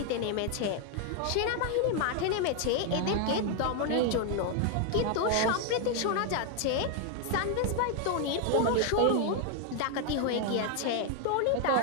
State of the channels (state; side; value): different; both; correlation 0.01